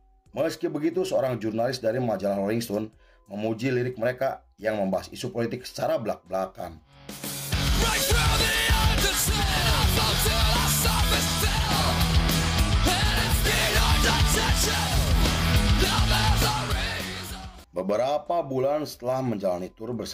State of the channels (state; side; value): identical; both; correlation 1.00